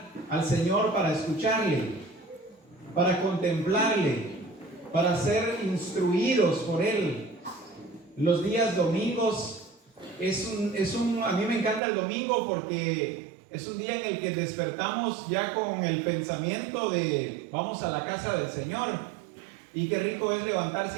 al Señor para escucharle, para contemplarle, para ser instruidos por Él. Los días domingos a mí me encanta el domingo porque es un día en el que despertamos ya con el pensamiento de vamos a la casa del Señor. Y qué rico es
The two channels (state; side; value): drops out; left; at 11.8 s